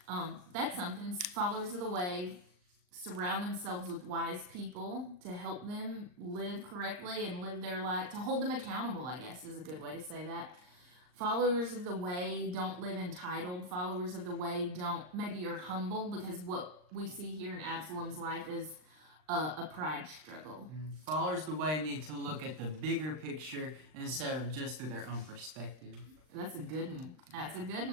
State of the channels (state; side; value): late; left; 39 ms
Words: that's something. Followers of the way surround themselves with wise people to help them live correctly and live their life, to hold them accountable, I guess is a good way to say that. Followers of the way don't live entitled. Followers of the way maybe are humble, because what we see here in Absalom's life is a pride struggle. Followers of the way need to look at the bigger picture instead of just through their own perspective. That's a good